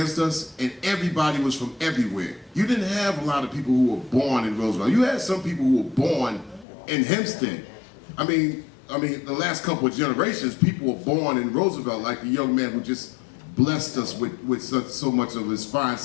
us, and everybody was from everywhere. You didn't have a lot of people who were born in Roosevelt. You had some people who were born in Hempstead. I mean, the last couple of generations, people were born in Roosevelt, like the young man who just blessed us with so much of his fine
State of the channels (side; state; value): right; drops out; at 6.7 s